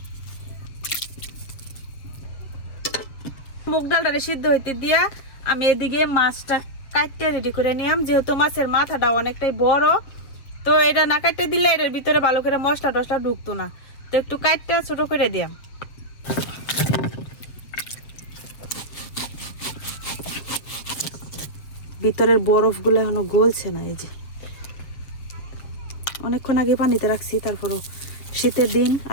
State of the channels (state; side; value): late; right; 7.1 ms